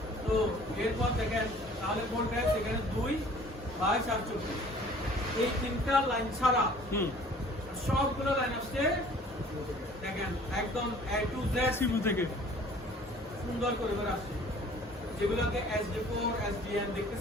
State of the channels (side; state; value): both; normal; correlation 0.51